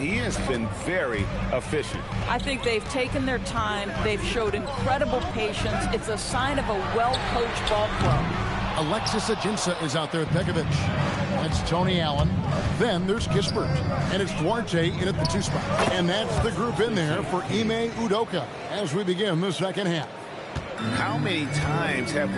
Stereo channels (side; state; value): both; identical; correlation 1.00